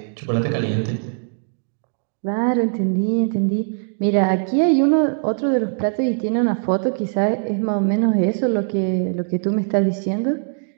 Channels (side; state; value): left; silent; digital silence